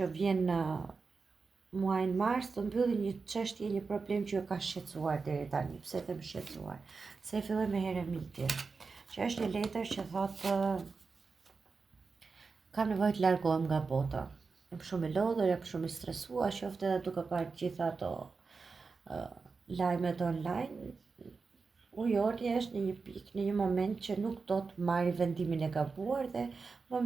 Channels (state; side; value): quieter; left; 4.6 dB